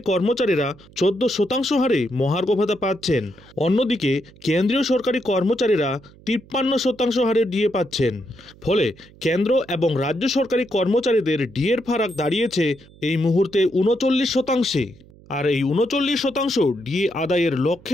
কর্মচারীরা 14% হারে মহার্ঘ ভাতা পাচ্ছেন। অন্যদিকে কেন্দ্রীয় সরকারি কর্মচারীরা 53% হারে ডিএ পাচ্ছেন। ফলে কেন্দ্র এবং রাজ্য সরকারি কর্মচারীদের ডিএর ফারাক দাঁড়িয়েছে এই মুহূর্তে 39%। আর এই 39% ডিএ আদায়ের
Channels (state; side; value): noise; right; hum, 24 dB below the sound